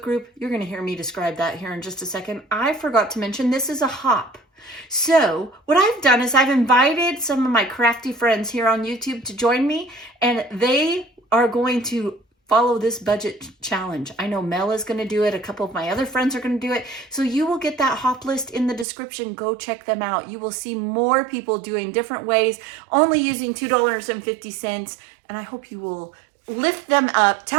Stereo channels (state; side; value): drops out; left; at 18.9 s